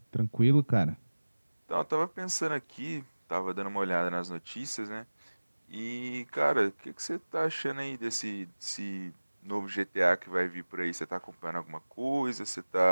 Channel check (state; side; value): inverted; both; correlation -1.00